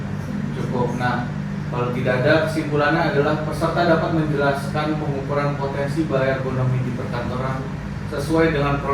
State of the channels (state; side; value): identical; both; correlation 1.00